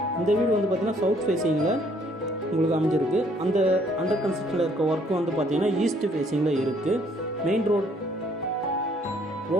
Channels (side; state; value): both; normal; correlation 0.64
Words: இந்த வீடு வந்து பார்த்திங்கன்னா சவுத் ஃபேஸிங்கில் உங்களுக்கு அமைஞ்சிருக்கு. அந்த அண்டர் கன்ஸ்ட்ரக்ஷனில் இருக்க ஒர்க்கு வந்து பார்த்திங்கன்னா ஈஸ்ட் ஃபேஸிங்கில் இருக்குது. மெயின்